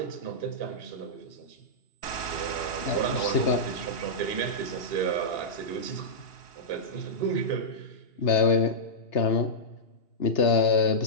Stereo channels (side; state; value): right; late; 2.8 ms